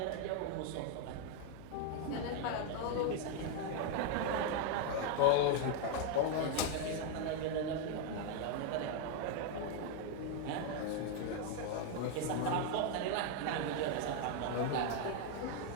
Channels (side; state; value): both; different; correlation 0.01